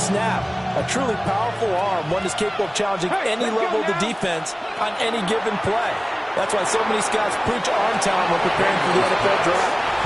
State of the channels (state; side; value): identical; both; correlation 1.00